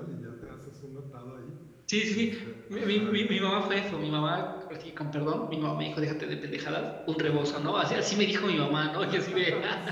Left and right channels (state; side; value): identical; both; correlation 1.00